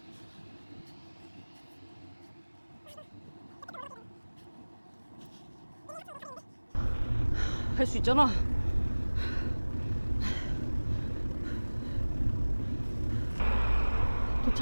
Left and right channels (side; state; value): both; inverted; correlation -1.00